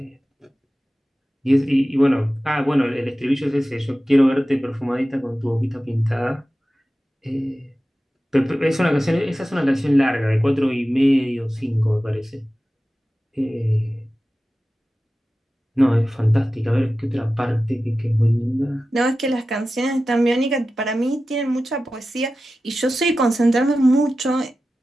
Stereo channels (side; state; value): both; normal; correlation 0.94